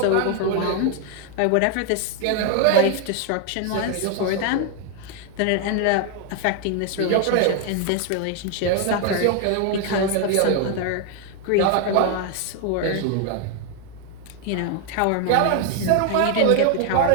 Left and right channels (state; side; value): different; both; correlation 0.00